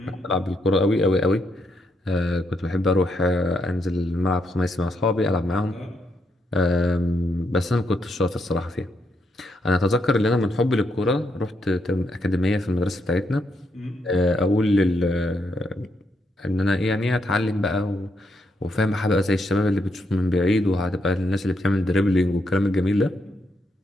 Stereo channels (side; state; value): both; normal; correlation 0.78